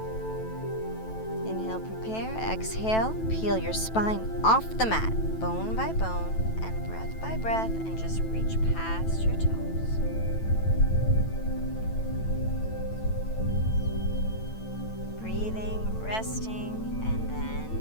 Inhale, prepare, exhale, peel your spine off the mat, bone by bone, and breath by breath, and just reach past your toes. Breathing, resting, and then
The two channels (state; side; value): late; right; 9.1 ms